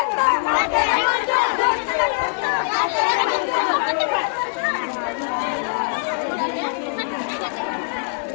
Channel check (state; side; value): silent; right; digital silence